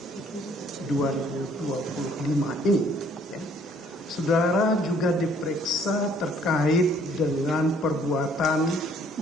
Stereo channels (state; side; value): normal; both; correlation 0.61